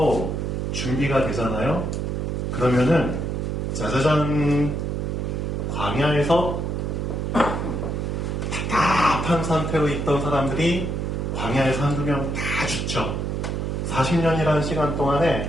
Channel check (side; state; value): right; noise; hum, 1 dB below the sound